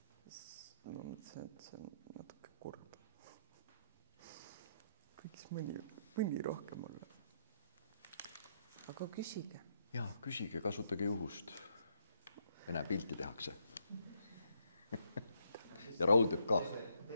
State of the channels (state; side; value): inverted; both; correlation -0.75